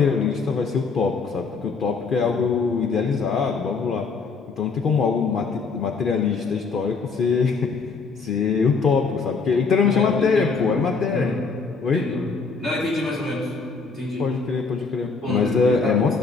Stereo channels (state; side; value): quieter; right; 4.7 dB